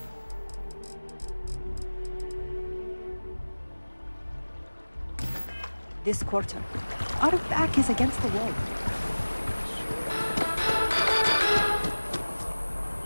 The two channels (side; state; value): both; inverted; correlation -1.00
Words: This quarter. Our back is against the wall.